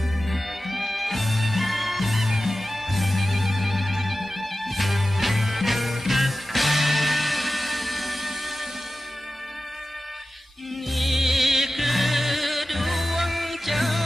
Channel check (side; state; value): both; normal; correlation 0.94